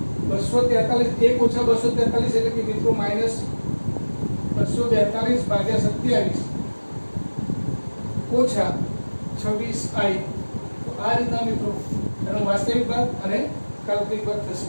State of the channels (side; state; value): both; inverted; correlation -1.00